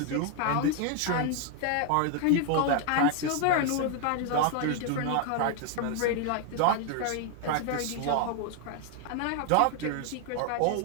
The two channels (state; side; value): different; both; correlation 0.00